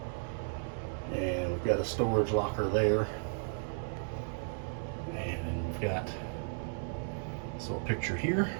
and we've got a storage locker there. And we've got this little picture here.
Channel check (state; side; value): silent; left; digital silence